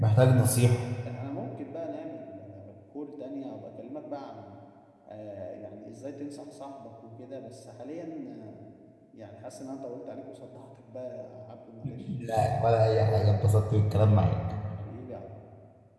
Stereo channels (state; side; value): identical; both; correlation 1.00